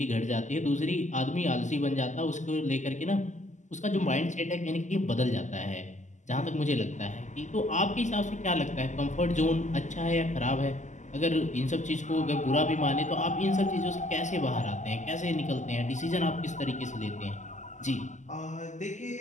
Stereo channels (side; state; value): right; late; 0.35 ms